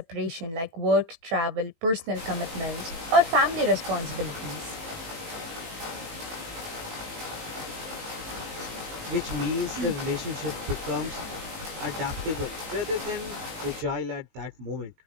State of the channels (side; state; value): left; late; 19 ms